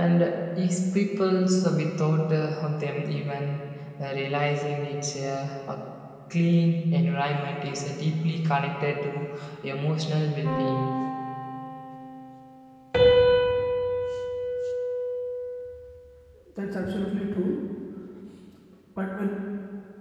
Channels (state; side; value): identical; both; correlation 1.00